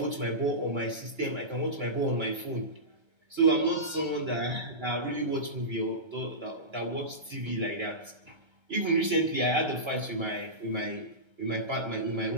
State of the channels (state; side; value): late; left; 1.3 ms